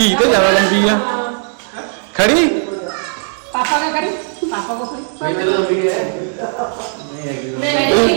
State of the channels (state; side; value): silent; left; 64 dB below the other